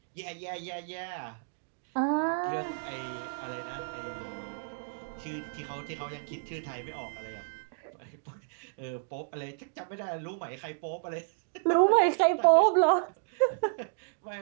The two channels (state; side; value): silent; left; digital silence